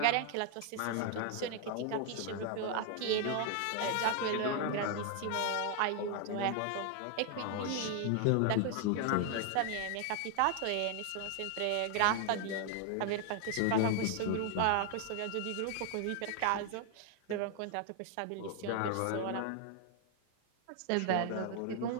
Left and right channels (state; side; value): different; both; correlation 0.00